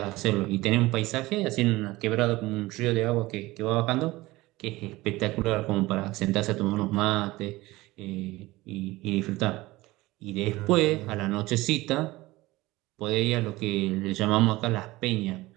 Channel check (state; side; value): quieter; left; 19.5 dB